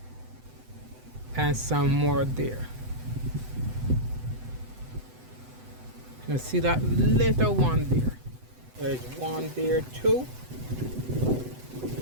and some more there. You see that little one there? There's one there too,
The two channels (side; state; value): left; late; 7.9 ms